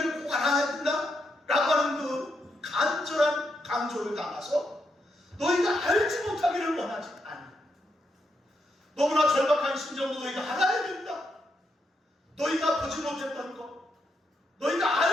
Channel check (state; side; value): normal; both; correlation 0.81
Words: 꼭 알아야 된다 라고 하는 그 간절한 강조를 담아서 너희가 알지 못하기를 원하지 않아. 너무나 절박한 심정으로 너희가 알아야 된다. 너희가 보지 못했던 것, 너희가